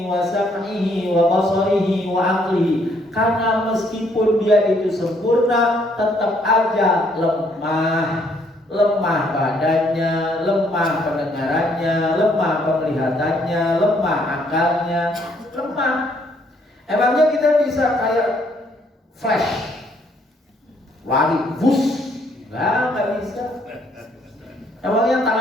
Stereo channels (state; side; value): normal; both; correlation 0.68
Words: wa sam'ihi wa basarihi wa aqlihi. Karena meskipun dia itu sempurna, tetap aja lemah. Lemah badannya, lemah pendengarannya, lemah penglihatannya, lemah akalnya, lemah. Emangnya kita bisa kayak flash, lari, bus? Nggak bisa. Emangnya